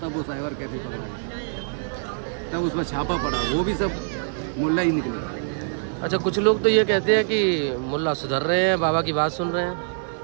वो साइबर कैफे पकड़ा गया, तब उसमें छापा पड़ा। वो भी सब मुल्ला ही निकले। अच्छा, कुछ लोग तो ये कहते हैं कि मुल्ला सुधर रहे हैं, बाबा की बात सुन रहे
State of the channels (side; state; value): left; silent; 62 dB below the other